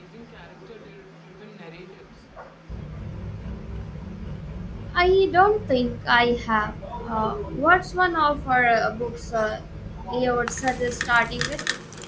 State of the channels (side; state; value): both; identical; correlation 1.00